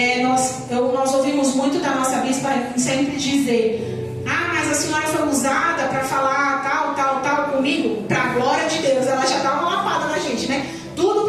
nós ouvimos muito da nossa bispa sempre dizer: mas a senhora foi usada para falar tal comigo, para a glória de Deus. Ela já dá uma lapada na gente, né? Tudo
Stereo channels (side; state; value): both; identical; correlation 1.00